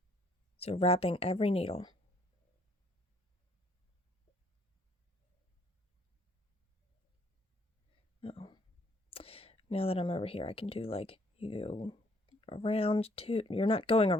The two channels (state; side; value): normal; both; correlation 0.64